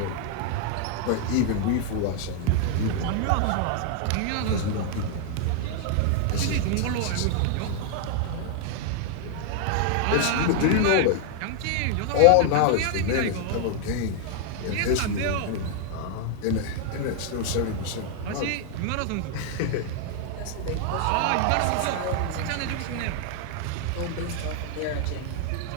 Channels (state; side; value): different; both; correlation 0.00